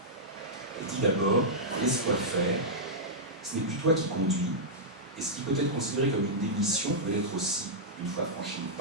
Elle dit d'abord, laisse-toi faire, ce n'est plus toi qui conduis, et ce qui peut être considéré comme une démission peut l'être aussi, une fois franchi le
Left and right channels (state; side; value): normal; both; correlation -0.10